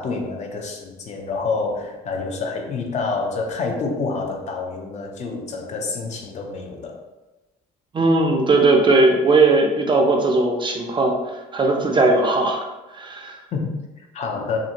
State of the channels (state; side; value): normal; both; correlation 0.51